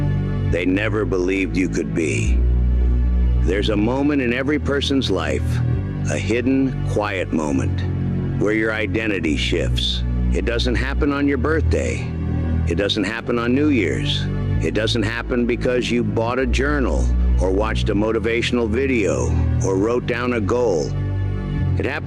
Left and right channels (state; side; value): identical; both; correlation 1.00